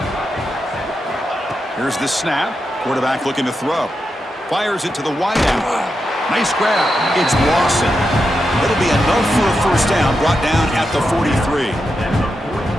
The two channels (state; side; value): normal; both; correlation 0.87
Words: Here's the snap. Quarterback looking to throw. Fires it to the wideout. Nice grab. It's Lawson. It'll be enough for a first down, brought down at the 43.